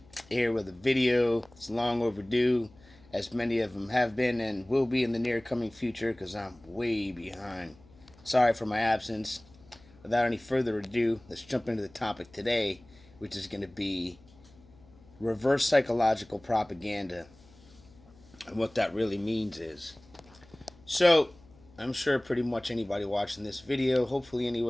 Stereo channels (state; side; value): noise; left; hum, 26 dB below the sound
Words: Here with a video. It's long overdue, as many of them have been and will be in the near coming future, because I'm way behind. Sorry for my absence. Without any further ado, let's jump into the topic today, which is going to be reverse psychological propaganda. And what that really means is, so, I'm sure pretty much anybody watching this video, hopefully